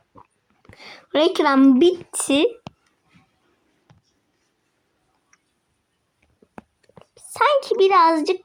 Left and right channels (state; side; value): identical; both; correlation 1.00